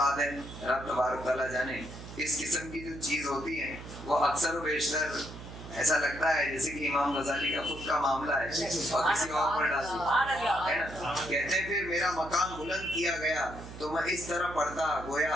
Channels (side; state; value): right; noise; hum, 13 dB below the sound